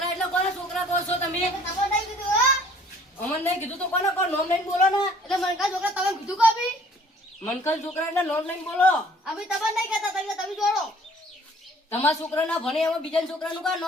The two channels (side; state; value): both; normal; correlation 0.56